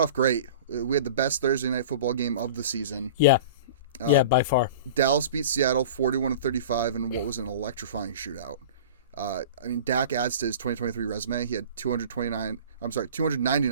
great. We had the best Thursday night football game of the season. Yeah. By far. Dallas beat Seattle 41-35 in what was an electrifying shootout. Dak adds to his 2023 resume. He had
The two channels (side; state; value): both; inverted; correlation -0.38